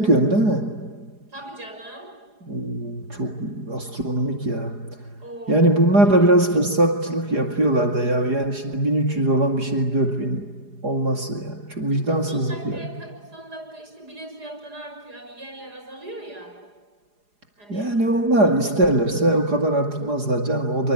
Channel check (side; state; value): left; late; 4.8 ms